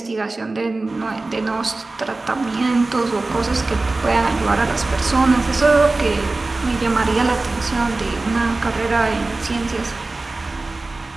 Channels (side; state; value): left; quieter; 3.3 dB